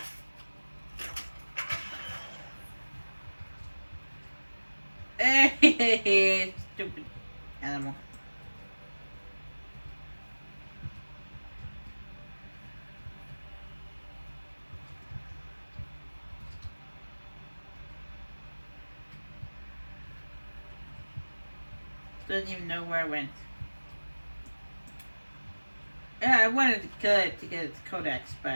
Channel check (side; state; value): both; inverted; correlation -1.00